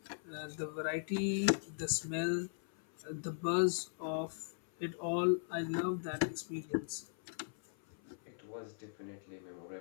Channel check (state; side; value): silent; right; 52 dB below the other